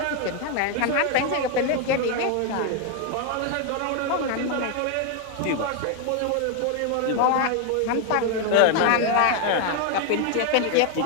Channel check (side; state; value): both; different; correlation 0.01